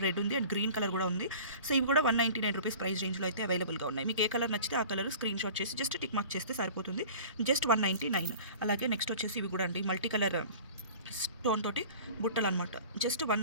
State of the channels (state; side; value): inverted; both; correlation -0.42